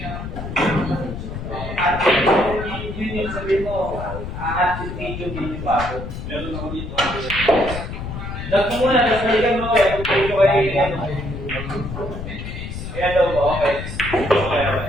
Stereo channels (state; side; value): noise; left; rumble, 8 dB below the sound